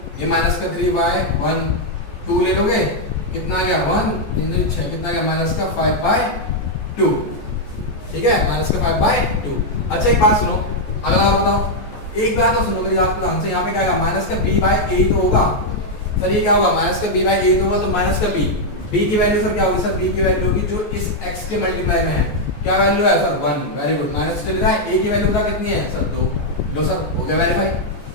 ये माइनस का 3/1 2 ले लोगे, कितना आ गया 1 3 6, कितना आ गया माइनस का 5/2, ठीक है माइनस का 5/2। अच्छा एक बात सुनो, अगला और बताओ, एक बात तो सुनो मेरी बात ध्यान से। यहाँ पे क्या आएगा माइनस का b/8 होगा सर, ये क्या होगा माइनस का b/8 होगा, तो माइनस का b की वैल्यू सर क्या होगी सर, b की वैल्यू होगी जो इस x के मल्टीप्लाई में है, क्या वैल्यू है सर 1। वेरी गुड, माइनस चल रहा है, a की वैल्यू पता कितनी है सर 2, लो सर हो गया वेरीफाई,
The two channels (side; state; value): right; late; 14 ms